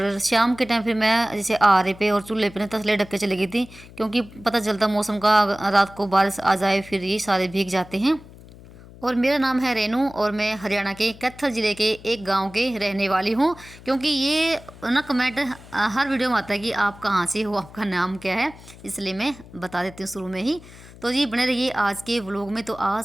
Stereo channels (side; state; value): left; noise; hum, 19 dB below the sound